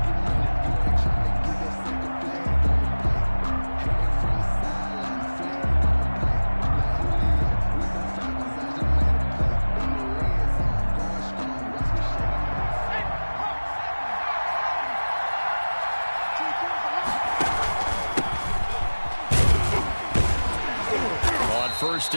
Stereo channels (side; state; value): both; inverted; correlation -1.00